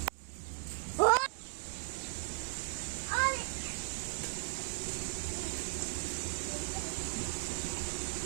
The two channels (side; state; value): left; silent; digital silence